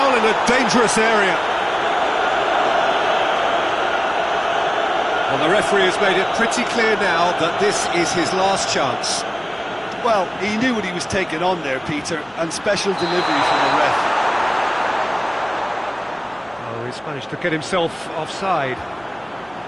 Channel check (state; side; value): noise; left; hum, 29 dB below the sound